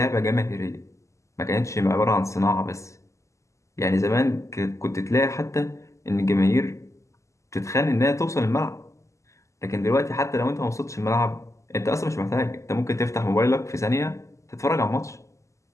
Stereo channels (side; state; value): right; late; 0.15 ms